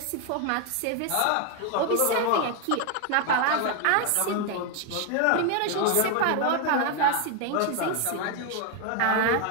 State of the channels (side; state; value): both; different; correlation 0.01